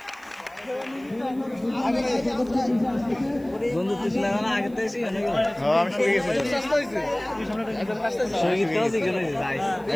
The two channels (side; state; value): right; noise; hiss, 29 dB below the sound